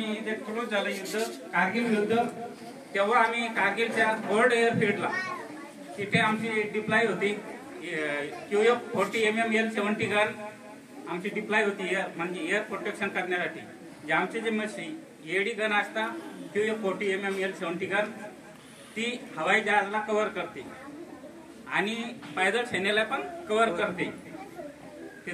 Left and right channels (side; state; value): both; identical; correlation 1.00